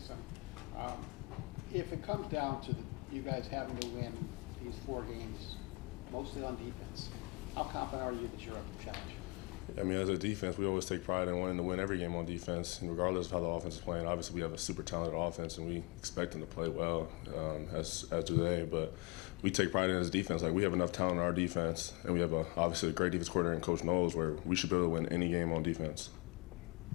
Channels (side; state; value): right; quieter; 27.7 dB